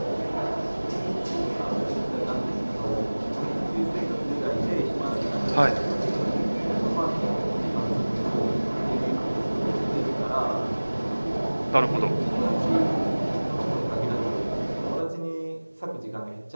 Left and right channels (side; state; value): both; inverted; correlation -1.00